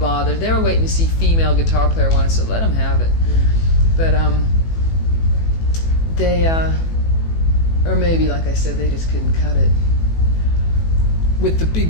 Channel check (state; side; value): late; right; 18 ms